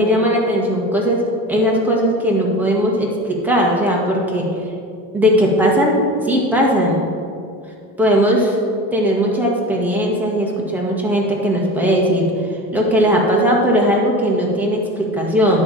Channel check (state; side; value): normal; both; correlation 0.33